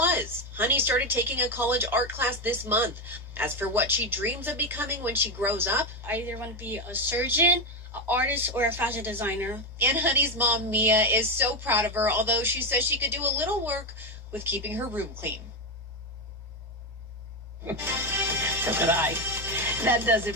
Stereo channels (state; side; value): normal; both; correlation 0.11